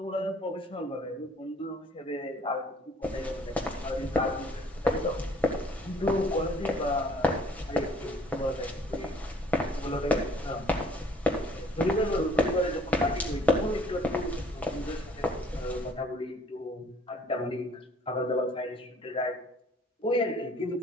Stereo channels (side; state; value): both; normal; correlation 0.57